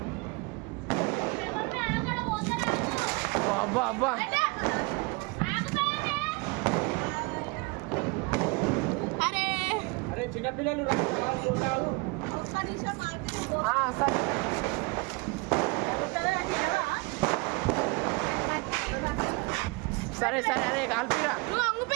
అబ్బా అరే చిన్నపిల్లలు సరే అరే కాల్పిరా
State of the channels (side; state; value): left; quieter; 27.6 dB